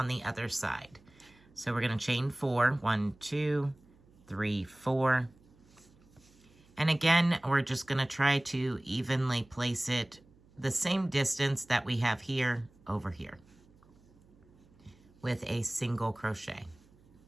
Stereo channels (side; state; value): right; noise; hum, 29 dB below the sound